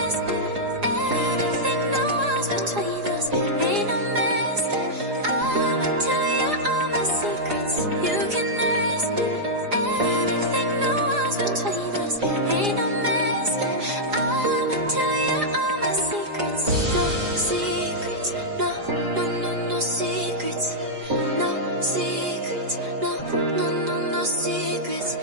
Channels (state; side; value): late; left; 4.9 ms